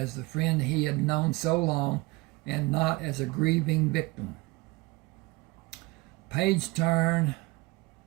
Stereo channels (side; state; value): left; quieter; 23.0 dB